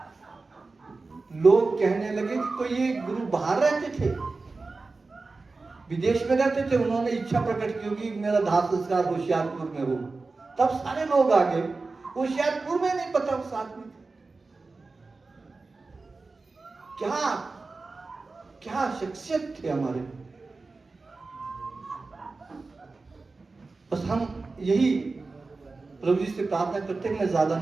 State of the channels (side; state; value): left; quieter; 3.8 dB